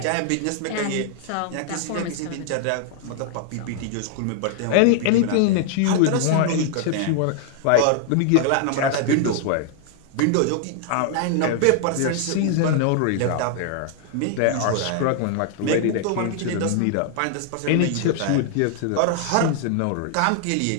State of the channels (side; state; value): both; different; correlation 0.00